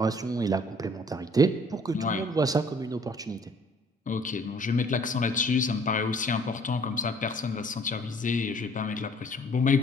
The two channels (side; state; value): both; normal; correlation 0.57